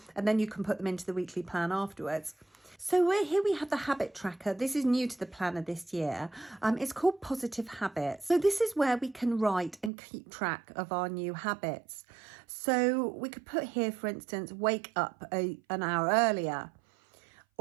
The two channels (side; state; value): left; drops out; at 9.9 s